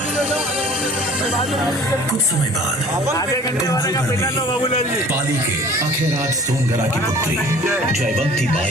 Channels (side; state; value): both; normal; correlation 0.48